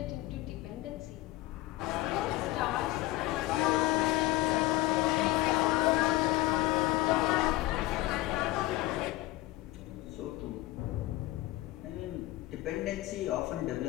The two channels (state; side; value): quieter; right; 17.8 dB